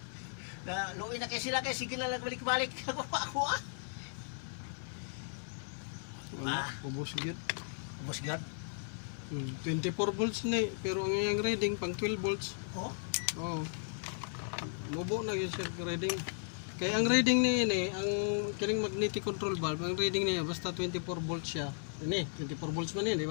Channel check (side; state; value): right; silent; 54 dB below the other